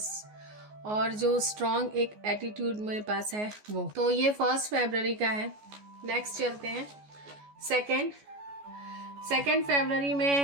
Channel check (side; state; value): left; late; 14 ms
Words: और जो स्ट्रॉन्ग एक एटीट्यूड मेरे पास है वो। तो ये 1 फरवरी का है। नेक्स्ट चलते हैं सेकेंड फरवरी